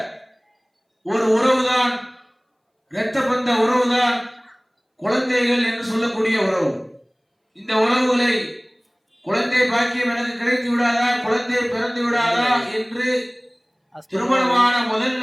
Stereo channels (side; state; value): both; identical; correlation 1.00